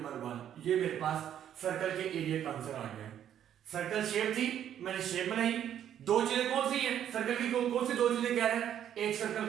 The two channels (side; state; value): left; quieter; 10.2 dB